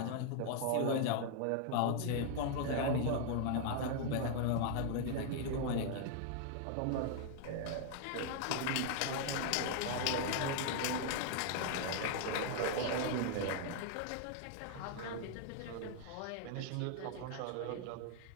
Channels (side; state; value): both; different; correlation 0.00